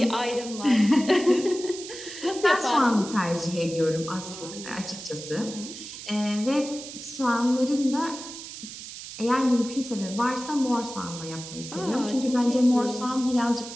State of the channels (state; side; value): noise; right; hiss, 12 dB below the sound